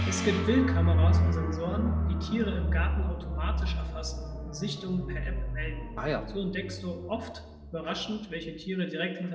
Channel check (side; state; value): both; identical; correlation 1.00